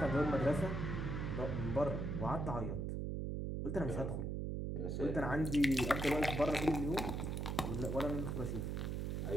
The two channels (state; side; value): noise; right; hum, 2 dB below the sound